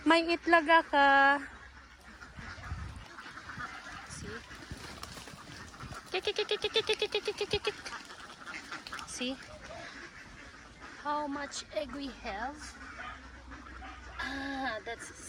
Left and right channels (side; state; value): both; identical; correlation 1.00